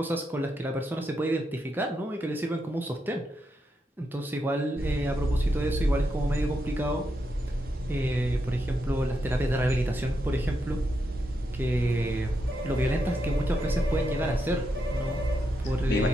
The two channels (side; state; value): both; normal; correlation 0.83